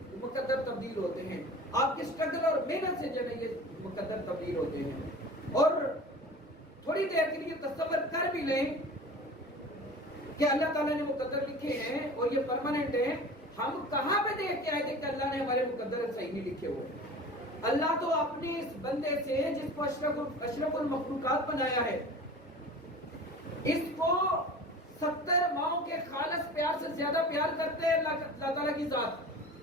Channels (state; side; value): normal; both; correlation 0.38